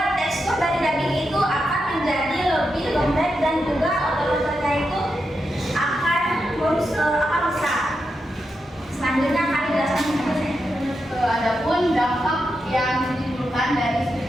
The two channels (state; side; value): normal; both; correlation 0.86